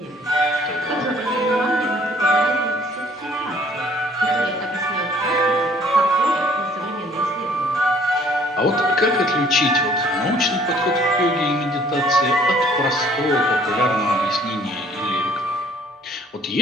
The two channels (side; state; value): both; normal; correlation 0.58